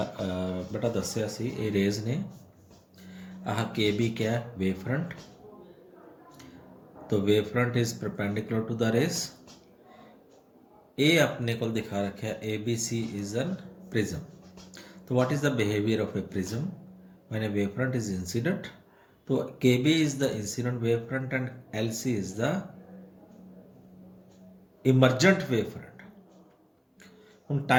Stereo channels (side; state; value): both; identical; correlation 1.00